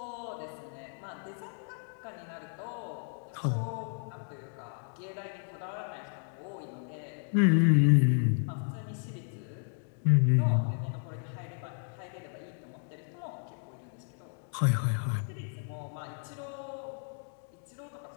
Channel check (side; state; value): right; silent; 56 dB below the other